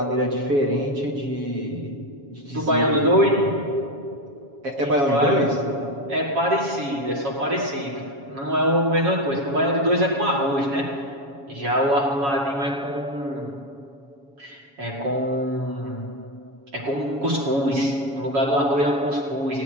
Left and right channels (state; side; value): late; left; 7.2 ms